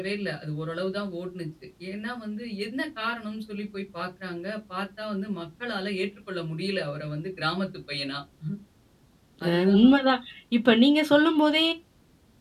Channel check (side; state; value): both; identical; correlation 1.00